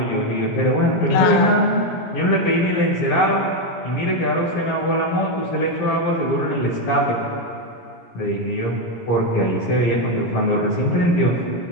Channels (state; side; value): late; right; 17 ms